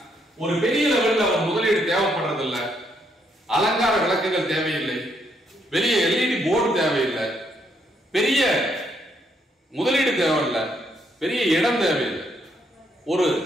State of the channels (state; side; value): normal; both; correlation 0.74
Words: ஒரு பெரிய லெவல்ல ஒரு முதலீடு தேவைப்படுறதில்லை, அலங்கார விளக்குகள் தேவையில்லை, பெரிய LED போர்டு தேவையில்லை, பெரிய முதலீடு தேவையில்லை, பெரிய இடம் தேவையில்லை. ஒரு